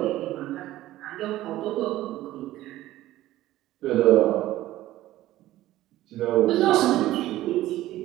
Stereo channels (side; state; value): left; quieter; 15.2 dB